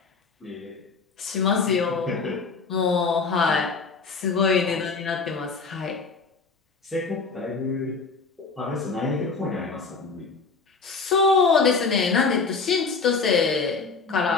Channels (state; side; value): quieter; right; 4.6 dB